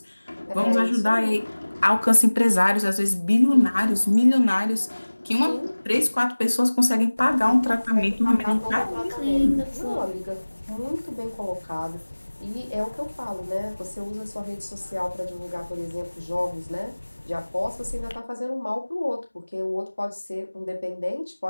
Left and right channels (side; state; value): both; inverted; correlation -1.00